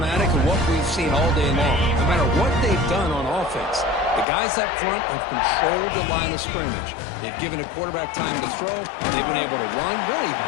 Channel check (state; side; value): drops out; right; at 4.2 s